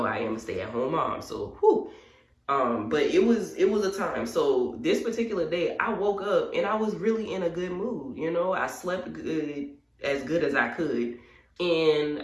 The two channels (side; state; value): both; identical; correlation 1.00